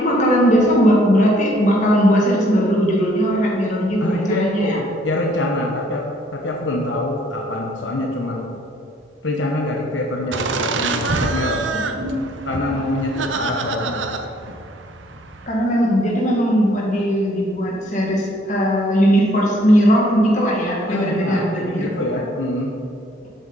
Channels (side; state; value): both; normal; correlation 0.62